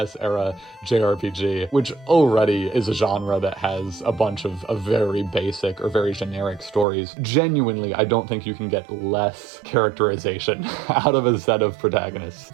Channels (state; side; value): drops out; left; at 6.9 s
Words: era JRPG, which already is a genre that has a bunch of very basic or very generic stories. Genuinely, I don't think you can get less characterization out of a set of protagonists.